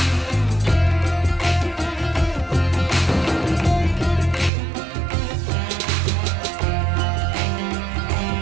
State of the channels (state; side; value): drops out; left; at 4.5 s